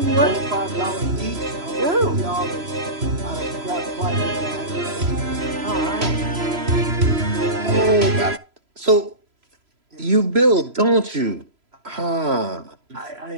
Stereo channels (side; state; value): left; late; 3.0 ms